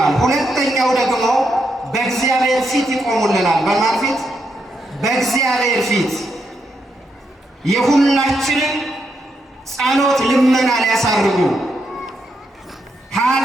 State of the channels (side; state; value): both; normal; correlation 0.81